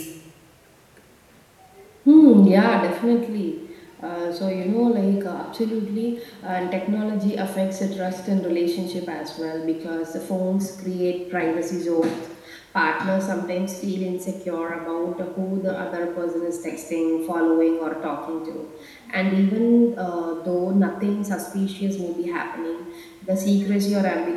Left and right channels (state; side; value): identical; both; correlation 1.00